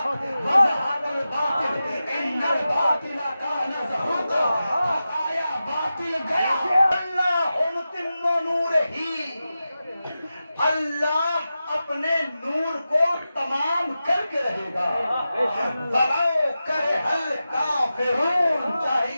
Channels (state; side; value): inverted; both; correlation -0.93